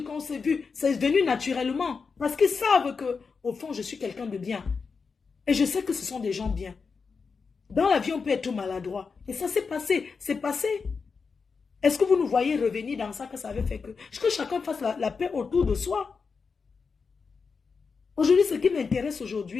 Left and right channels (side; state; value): right; quieter; 5.1 dB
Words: qu'on s'est vu. C'est venu naturellement. Parce qu'ils savent que, au fond, je suis quelqu'un de bien. Et je sais que ce sont des gens bien. Dans la vie, on peut être maladroit. Et ça s'est passé. C'est passé. Est-ce que vous nous voyez revenir dans ça que ça avait fait que chacun fasse la paix autour de soi? Aujourd'hui, ce qui m'intéresse